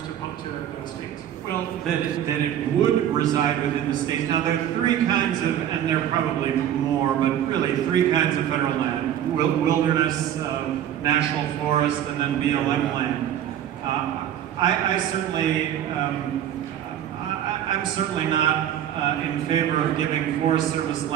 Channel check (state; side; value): quieter; left; 10.6 dB